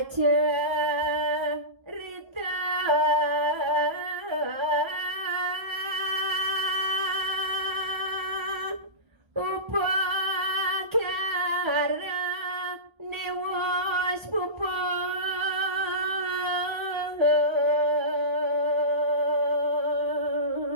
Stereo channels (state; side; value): late; left; 1.3 ms